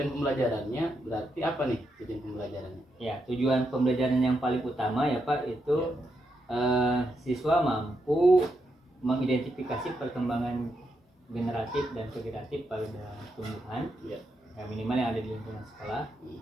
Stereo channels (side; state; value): both; normal; correlation 0.82